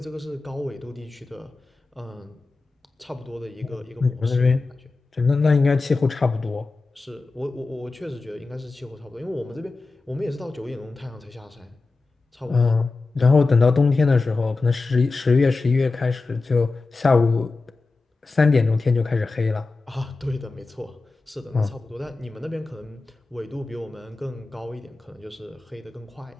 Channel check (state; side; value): quieter; right; 3.7 dB